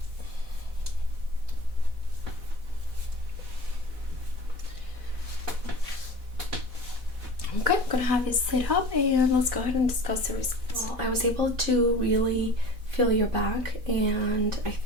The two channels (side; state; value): left; late; 4.1 ms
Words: Okay, I'm gonna have you sit up and let's go ahead and discuss the results. Well, I was able to really feel your back, and I